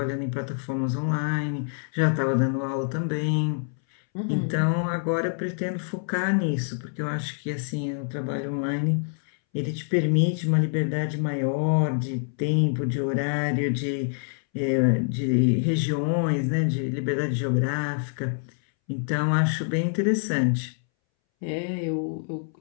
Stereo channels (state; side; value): silent; right; 61 dB below the other